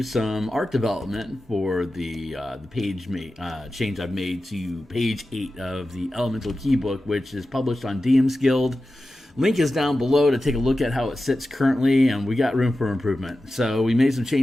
some art development for the page change I've made to page 8 of the Elemental Keybook, which is published on DMsGuild. Link is down below to take a look at how it sits currently, and we got room for improvement. So we made some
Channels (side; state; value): both; normal; correlation 0.93